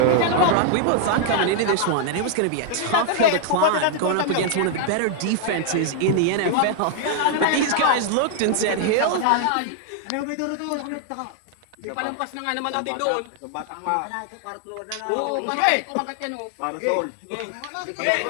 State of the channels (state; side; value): different; both; correlation 0.00